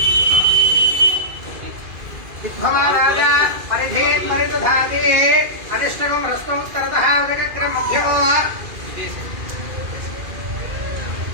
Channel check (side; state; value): left; late; 2.4 ms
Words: दिग्भवाराजा परिधेन् परिदधाति अनिष्टकं हस्तं उत्तरतः उदकक्रम मध्यमो